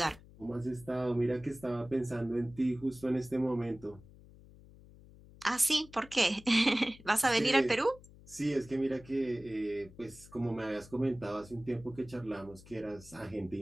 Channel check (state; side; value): noise; left; hum, 21 dB below the sound